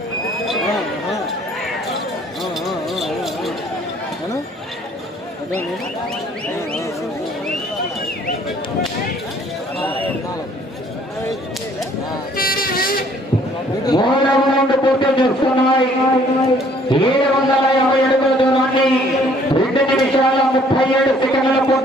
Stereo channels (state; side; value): normal; both; correlation 0.60